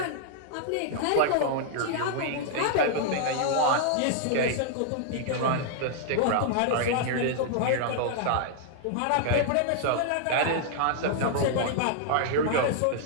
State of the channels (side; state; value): both; different; correlation -0.01